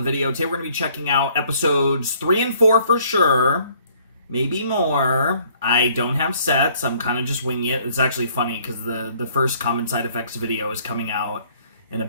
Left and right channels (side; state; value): both; inverted; correlation -0.61